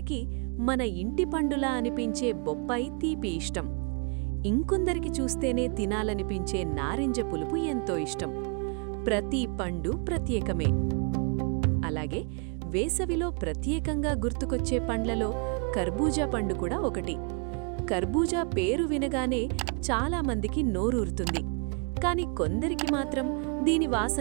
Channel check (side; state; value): left; quieter; 37.4 dB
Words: మన ఇంటి పండులా అనిపించే బొప్పాయి తీపి ఇష్టం. ఇంకొందరికి చూస్తేనే తినాలనిపించే నారింజ పులుపు ఎంతో ఇష్టం. ప్రతి పండు ప్రత్యేకమే. అలాగే వేసవిలో ప్రత్యేకంగా గుర్తుకొచ్చే పండ్లలో కర్బూజా పండు కూడా ఒకటి. కర్బూజా పేరు వినగానే చాలామందికి నోరూరుతుంది. కాని కొందరికి మాత్రం దీని